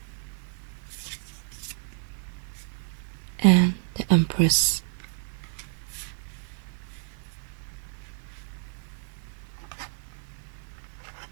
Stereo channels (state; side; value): silent; left; digital silence